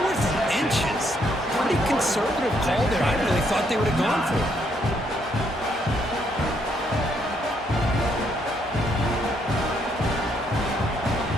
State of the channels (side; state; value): both; normal; correlation 0.72